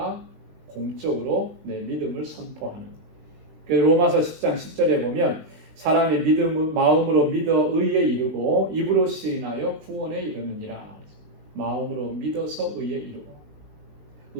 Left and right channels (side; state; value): left; late; 19 ms